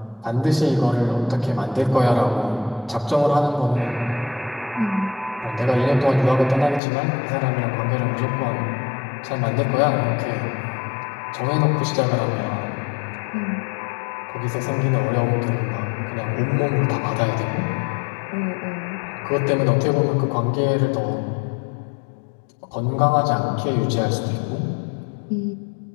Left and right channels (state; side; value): drops out; right; at 6.8 s